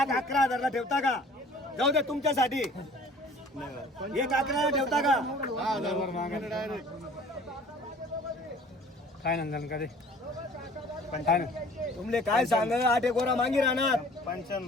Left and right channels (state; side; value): normal; both; correlation 0.50